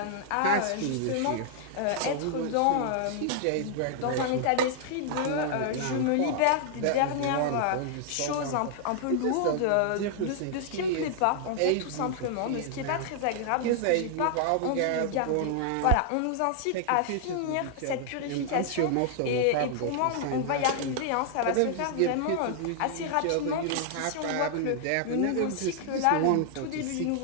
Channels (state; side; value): different; both; correlation -0.01